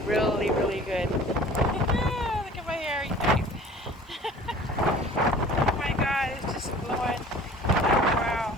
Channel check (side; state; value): both; normal; correlation 0.46